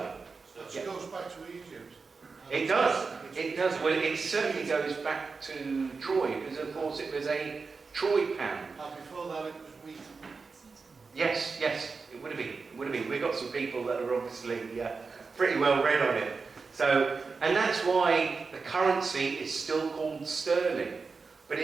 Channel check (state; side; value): quieter; left; 4.6 dB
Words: So Yeah. it goes back to Egypt. It does. It does. Well, it certainly goes back to Troy, because of course it was a Troy pound. And before that it was wheat. Yes, it would have been. It would have been. We've got some people that are obviously pretty well read on it. So, and that's why the currency is still called sterling. But